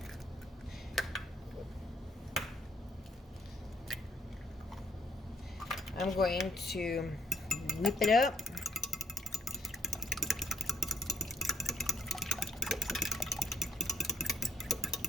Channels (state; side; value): normal; both; correlation 0.69